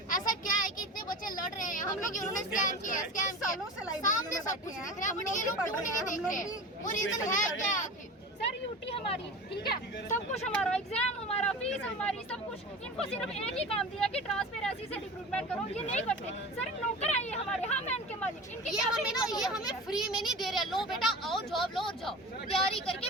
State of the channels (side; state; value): both; normal; correlation 0.33